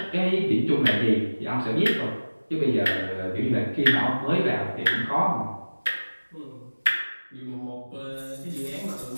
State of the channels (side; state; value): both; inverted; correlation -1.00